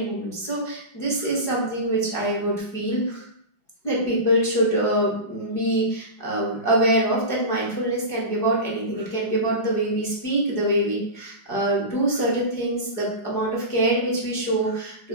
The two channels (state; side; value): late; right; 5.4 ms